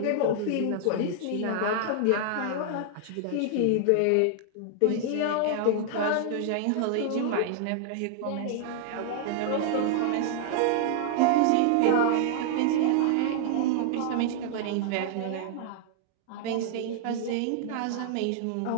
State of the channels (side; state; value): both; different; correlation -0.01